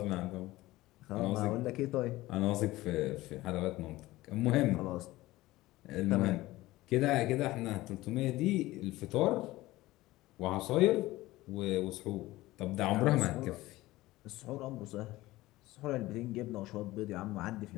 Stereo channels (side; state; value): right; quieter; 18.0 dB